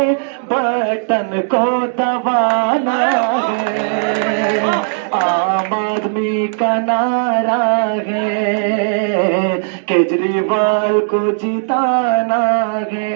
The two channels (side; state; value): left; silent; digital silence